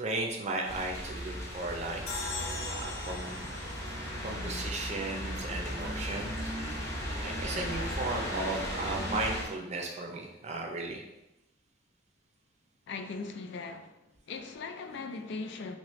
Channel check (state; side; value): normal; both; correlation 0.27